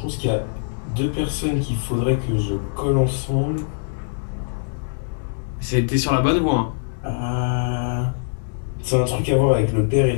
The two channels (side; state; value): right; silent; digital silence